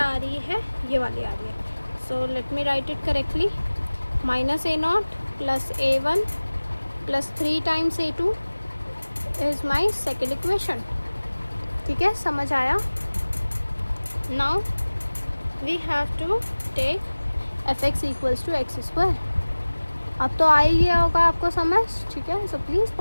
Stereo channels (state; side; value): inverted; both; correlation -1.00